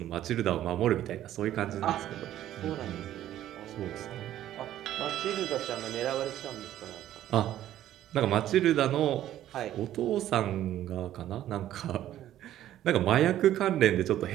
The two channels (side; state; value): left; quieter; 12.6 dB